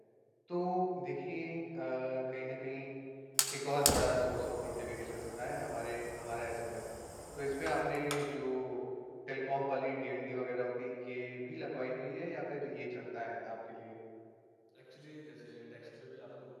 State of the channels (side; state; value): both; identical; correlation 1.00